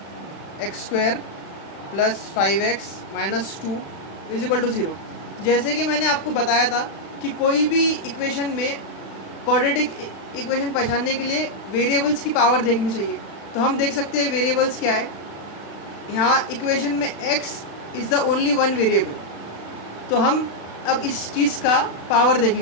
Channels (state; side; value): late; right; 36 ms